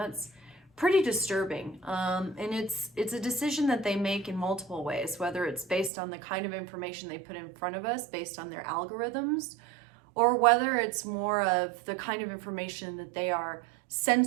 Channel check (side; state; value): left; drops out; at 5.9 s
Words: pretty disturbing. And it's a decision that they make in multiple ways, whether it's based on the kind of information they put in front of us, based on their algorithms, or whether it's more of the kind of information that they are